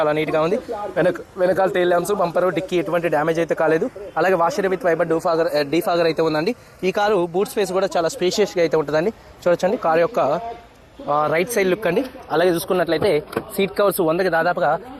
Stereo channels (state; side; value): identical; both; correlation 1.00